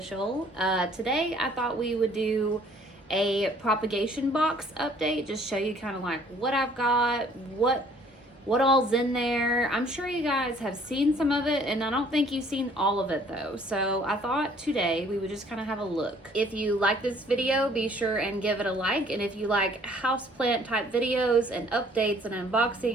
Today I thought we would do a propagation box update, just show you kind of like what I've got, what all's in there. I'm sure you guys have seen some of it, and I don't think you've seen all of it though. So I thought today we would just kind of have a look. If you like this video, be sure and give it a like. And if you like houseplant type videos and updates and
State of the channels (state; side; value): normal; both; correlation 0.58